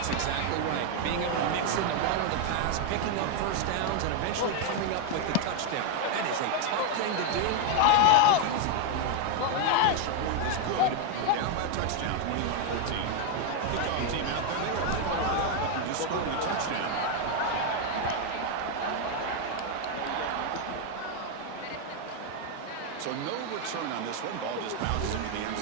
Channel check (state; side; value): different; both; correlation 0.01